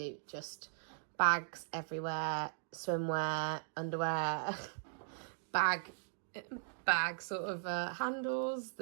just bags everywhere. Swimwear, underwear. bag sort of handles.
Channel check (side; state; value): left; silent; digital silence